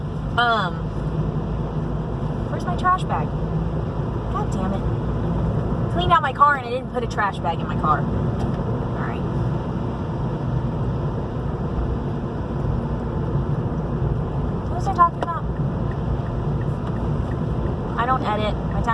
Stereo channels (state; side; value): identical; both; correlation 1.00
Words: Where's my trash bag? God damn it. Cleaned out my car and I didn't put a trash bag in my car. Alright. What was I talking about? I don't edit. My